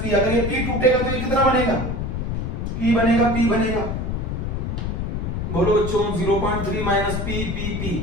पी, अगर ये पी टूटेगा तो ये कितना बनेगा, पी बनेगा, पी बनेगा, बोलो बच्चों 0.3 माइनस पी, पी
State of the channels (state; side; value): noise; left; rumble, 2 dB below the sound